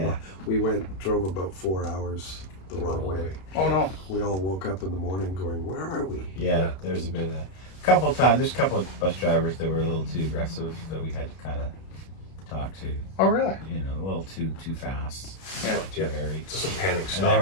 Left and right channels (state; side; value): late; right; 31 ms